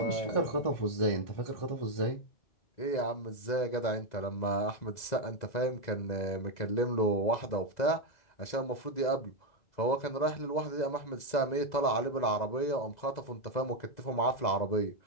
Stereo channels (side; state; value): right; late; 2.0 ms